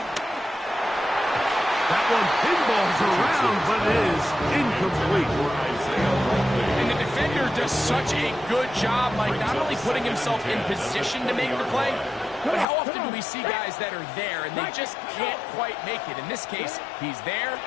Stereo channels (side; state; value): right; drops out; at 12.7 s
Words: That one pinballs around, but it is incomplete. And the defender does such a good job, Mike, not only putting himself in position to make the play, but how often do we see guys that are there and they just can't quite make it? In this case, he's there,